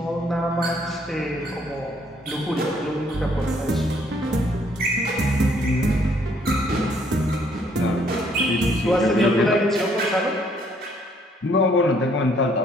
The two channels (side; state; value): both; normal; correlation 0.66